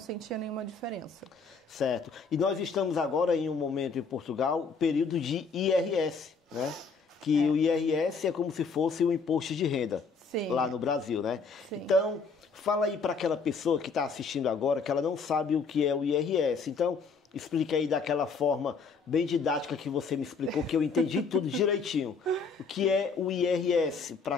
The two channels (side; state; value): right; quieter; 4.9 dB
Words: nenhuma diferença. Certo. E nós estamos agora em um momento em Portugal, período de IRS, né? Que o IRS é como se fosse o imposto de renda. Sim. Lá no Brasil, né? Sim. Então, fala aí para aquela pessoa que está assistindo agora, que ela não sabe o que é o IRS. Então, explique aí daquela forma bem didática que você me explicou, que eu entendi tudo direitinho. O que é o IRS para